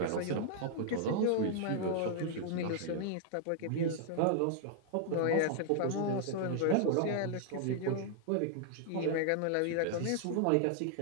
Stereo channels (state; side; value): different; both; correlation 0.00